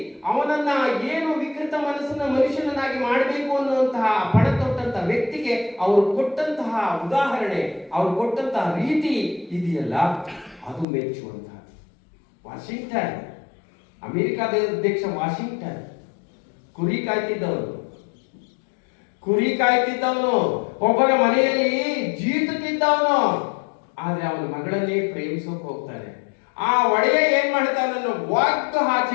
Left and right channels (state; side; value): drops out; right; at 10.9 s